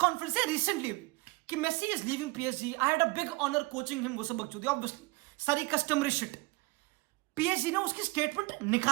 से रिसेंटली कि Messi is leaving PSG, I had a big honour coaching him, वो सब बकचोदी ऑब्वियसली, सारी कस्टमरी शिट। पीएसजी ने उसकी स्टेटमेंट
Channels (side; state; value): left; quieter; 23.2 dB